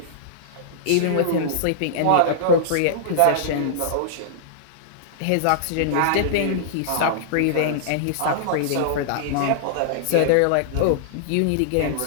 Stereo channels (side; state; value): both; different; correlation -0.01